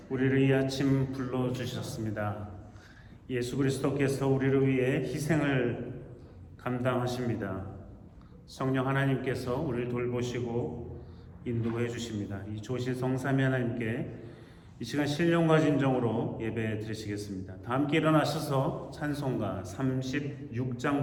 우리를 이 아침 불러주셨습니다. 예수 그리스도께서 우리를 위해 희생을 감당하십니다. 성령 하나님께서 우리를 돌보시고 인도해 주십니다. 이 조실 성삼위 하나님께 이 시간 신령과 진정으로 예배 드리시겠습니다. 다 함께 일어나셔서 찬송가 36장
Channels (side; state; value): both; identical; correlation 1.00